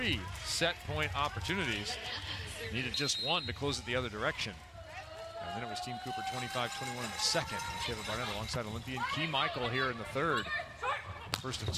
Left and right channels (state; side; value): identical; both; correlation 1.00